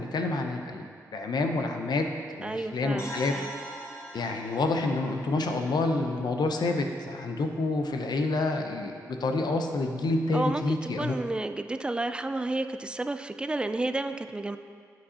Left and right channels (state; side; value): normal; both; correlation 0.76